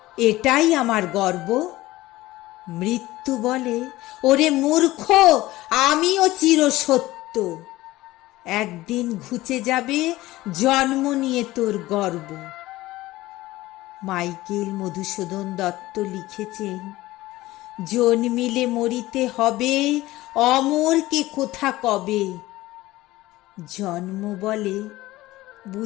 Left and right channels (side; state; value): right; quieter; 17.6 dB